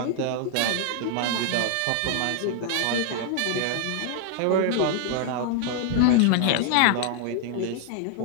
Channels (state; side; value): different; both; correlation 0.00